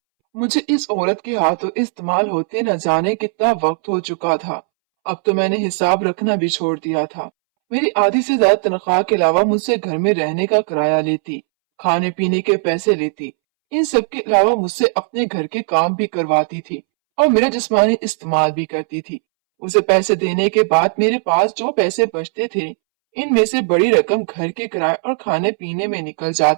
मुझे इस औरत के हाथों इस्तेमाल होते न जाने कितना वक्त हो चुका था। अब तो मैंने हिसाब रखना भी छोड़ दिया था। मेरी आधी से ज्यादा तनख्वाह के अलावा मुझसे घर में रहने का किराया लेती, खाने पीने के पैसे लेती। इन सब के अलावा मुझसे अपने घर के काम भी करवाती थी और मेरा जिस्मानी इस्तेमाल भी करती थी। उसे पैसे देने के बाद मेरे पास जो पैसे बचते थे, इनमें से बड़ी रकम घर के किराए और खाने पीने में निकल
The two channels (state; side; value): silent; left; 66 dB below the other